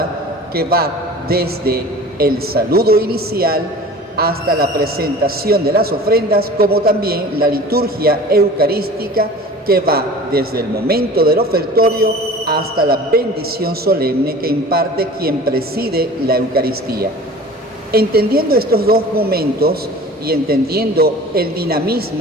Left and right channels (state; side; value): normal; both; correlation 0.41